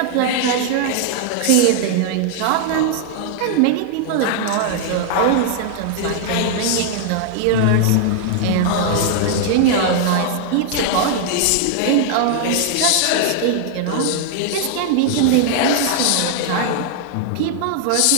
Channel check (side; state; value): both; different; correlation 0.00